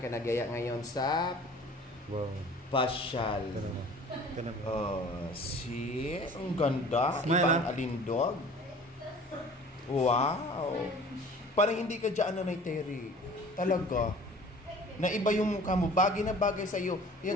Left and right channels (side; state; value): both; normal; correlation 0.46